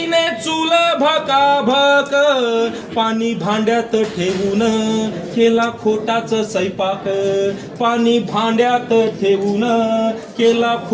चूल भकाभक. पाणी भांड्यात ठेवून केला खोटाच स्वयंपाक, पाणी भांड्यात ठेवून केला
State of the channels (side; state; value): both; identical; correlation 1.00